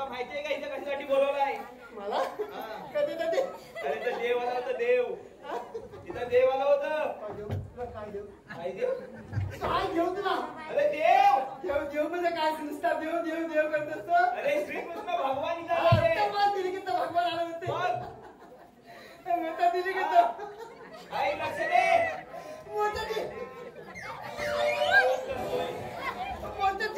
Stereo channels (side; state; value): both; identical; correlation 1.00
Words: माहितीये का इथं कशासाठी बोलवलाय? मला हा. कधी कधी अरे तर देव आला होता, देव. तिथं देव आला होतं. काय देऊ तुला काय देऊ काय देव? काय घेऊ तुला अरे देव. देव देव म्हणजे काय नुसता देव देव देव करत असतो. अरे श्रीकृष्ण भगवान इथं आले. दिली की भगवान आले होते मग मोठा दिली की तो काही लक्ष दे. मोठा